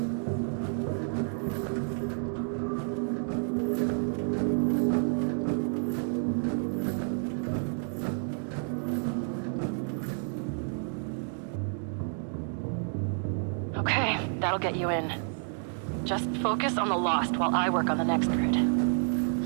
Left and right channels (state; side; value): silent; left; 58 dB below the other